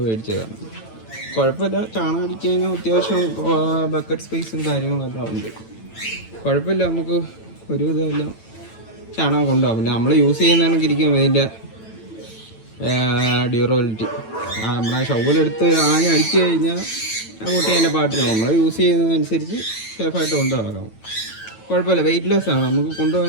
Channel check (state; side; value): late; right; 9.0 ms